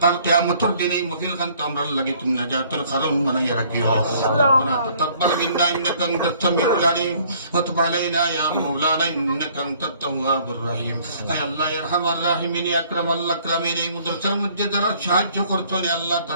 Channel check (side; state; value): both; inverted; correlation -0.59